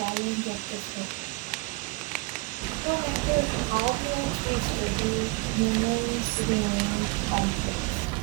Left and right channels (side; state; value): left; quieter; 25.6 dB